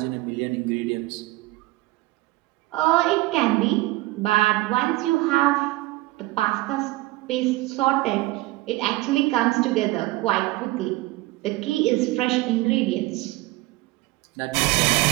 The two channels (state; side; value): quieter; left; 19.6 dB